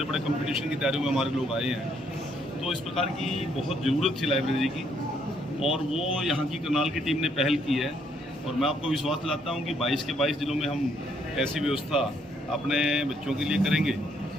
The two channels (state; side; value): normal; both; correlation 0.70